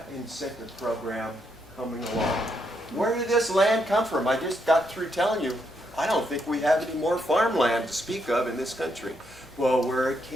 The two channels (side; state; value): both; normal; correlation 0.77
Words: incentive program coming along. Where did this land come from? I just got through telling you, I don't think we have any more farmland to speak of in this country. Well, where it